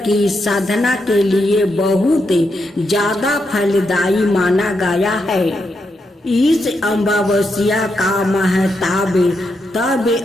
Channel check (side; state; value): both; normal; correlation 0.83